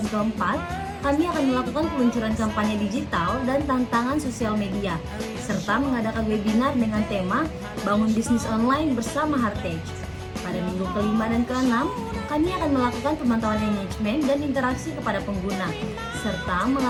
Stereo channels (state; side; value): identical; both; correlation 1.00